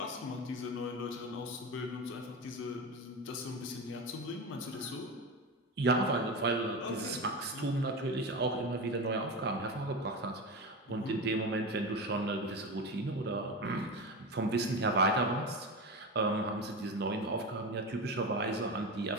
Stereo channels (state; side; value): normal; both; correlation 0.22